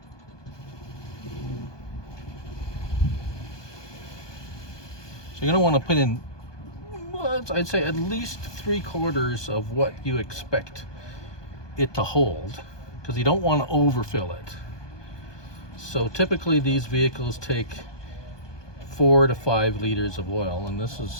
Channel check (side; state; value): right; late; 1.2 ms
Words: you're gonna want to put in, I'd say at least 3/4 of what you expect it to hold, because you don't want to overfill it. So typically these vehicles take 4 to 5 liters of oil, and this